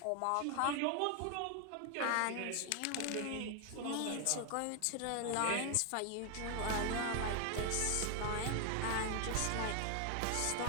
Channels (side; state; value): both; different; correlation 0.00